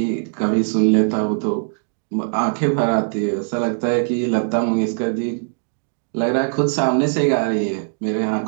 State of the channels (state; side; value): silent; left; digital silence